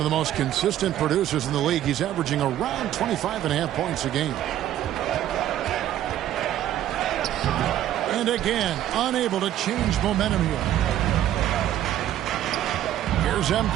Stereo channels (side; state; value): left; quieter; 12.2 dB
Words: the most consistent producers in the league. He's averaging around 25.5 points a game. And again, unable to change momentum here. Here's